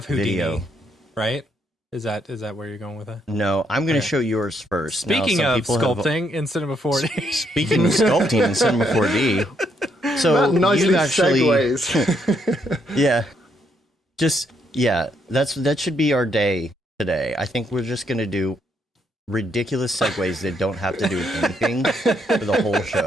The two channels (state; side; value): normal; both; correlation 0.74